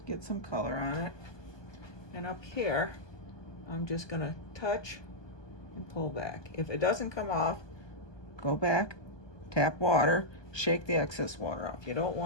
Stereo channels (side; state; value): right; late; 1.2 ms